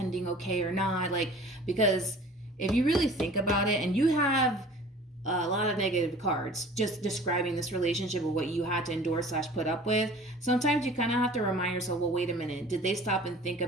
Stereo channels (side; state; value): both; normal; correlation 0.45